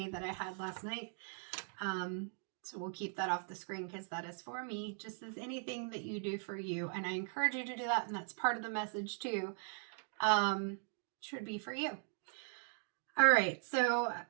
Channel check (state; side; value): silent; left; 51 dB below the other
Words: that I had last night. So we'll keep that off the screen because that is for me, just as anything that you do for you. And I encourage you to do that, and that's part of the message too, should be for you. All right, so